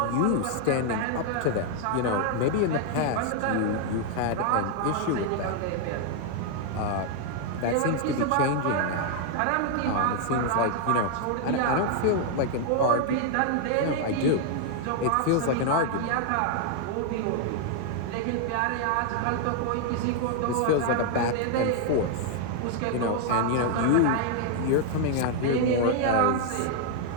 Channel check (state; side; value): different; both; correlation 0.00